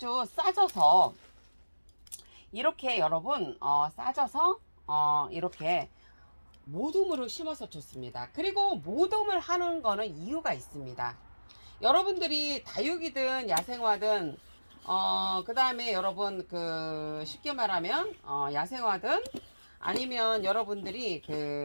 싸져서 이렇게 여러분 싸져서 이렇게 모둠으로 심어서 좋습니다. 그리고 모둠을 하는 거는 이유가 있습니다. 여러분들이 다육이든 야생화든 그 다음에 여러분 쉽게 말하면 야생화든 아니면 여러분들이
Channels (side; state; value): both; inverted; correlation -1.00